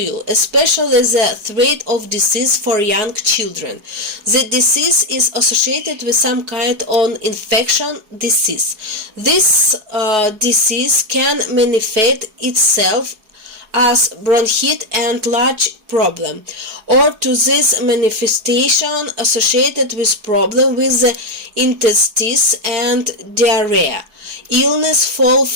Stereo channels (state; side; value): late; left; 4.6 ms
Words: especially the threat of disease for young children. The disease is associated with some kind of infection disease. This disease can manifest itself as bronchitis and large problem, or to this manifestation associated with problem with the intestines and diarrhea. Illness fall